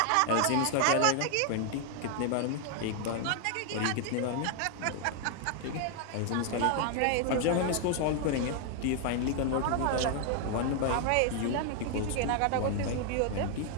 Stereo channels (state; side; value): different; both; correlation 0.00